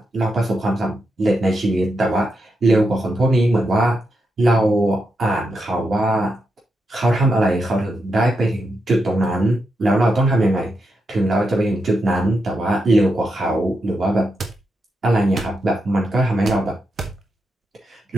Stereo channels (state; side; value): normal; both; correlation 0.85